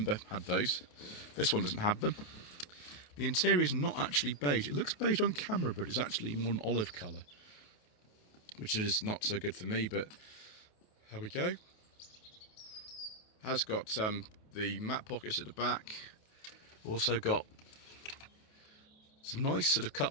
had those. This one doesn't have them. The interior is not actually beige. It looks beige on camera, but it's actually more an olive colour, which is not so good for me, but there we go. Has got the mat pockets at the back. Also got some nice sort of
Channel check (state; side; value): late; right; 28 ms